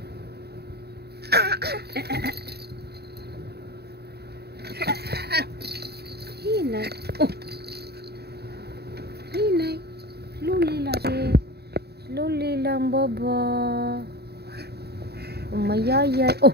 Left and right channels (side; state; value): left; late; 0.47 ms